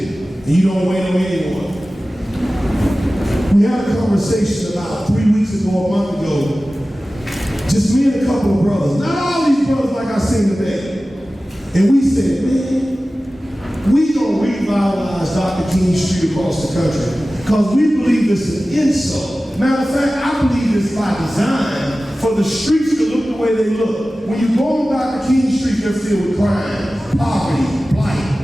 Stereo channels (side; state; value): both; normal; correlation 0.96